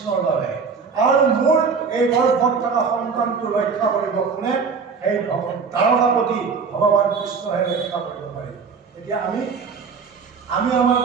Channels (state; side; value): quieter; left; 5.4 dB